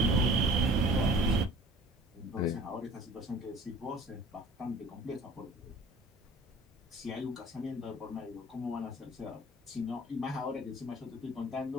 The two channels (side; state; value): both; normal; correlation 0.47